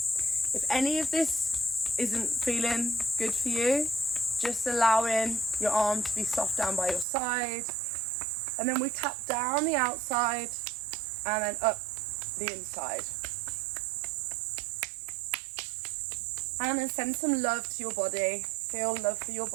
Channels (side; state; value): left; drops out; at 7.1 s